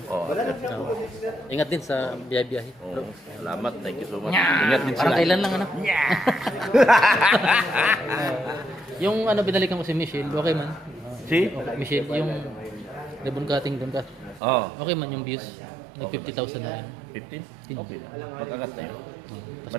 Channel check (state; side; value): drops out; left; at 14.4 s